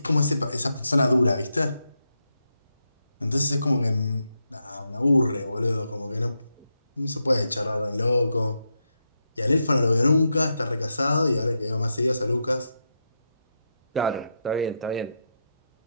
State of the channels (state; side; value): inverted; both; correlation -0.84